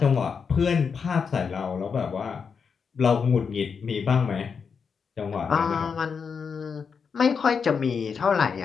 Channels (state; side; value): quieter; right; 6.0 dB